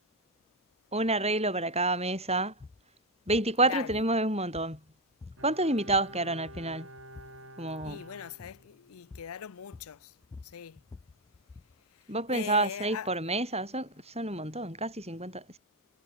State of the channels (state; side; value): normal; both; correlation 0.08